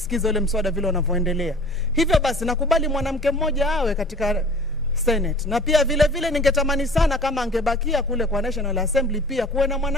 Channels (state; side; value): normal; both; correlation 0.45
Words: ile mswada vile unavyoendelea. Hivyo basi nakubali mwanamke mmoja awe katika Senate. Na pia vile vile ningetamani sana kama angebakia kule kwa National Assembly pia kuwe na